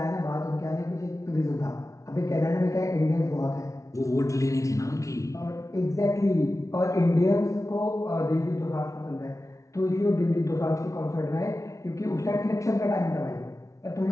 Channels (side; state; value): right; late; 0.15 ms